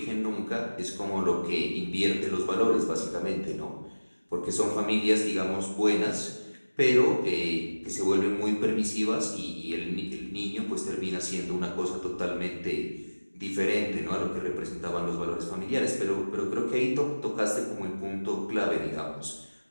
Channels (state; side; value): inverted; both; correlation -1.00